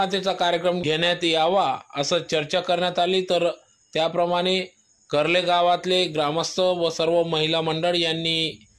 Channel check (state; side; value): identical; both; correlation 1.00